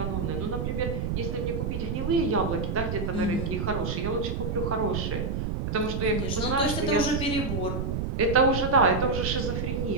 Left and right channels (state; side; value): noise; right; rumble, 2 dB below the sound